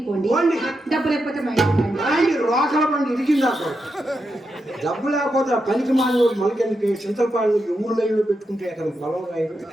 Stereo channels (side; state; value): both; normal; correlation 0.86